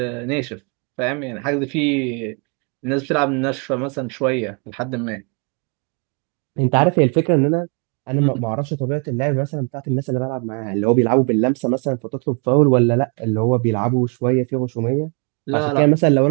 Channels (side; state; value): left; quieter; 37.1 dB